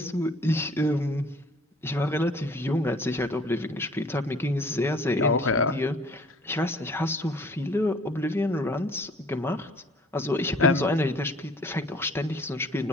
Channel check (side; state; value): both; normal; correlation 0.53